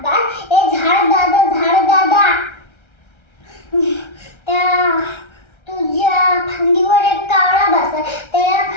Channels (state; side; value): late; right; 1.3 ms